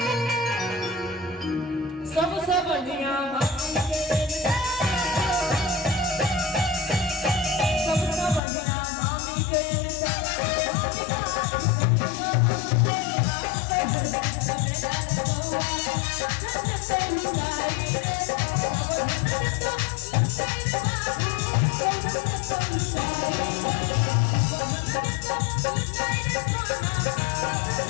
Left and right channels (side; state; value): right; drops out; at 8.4 s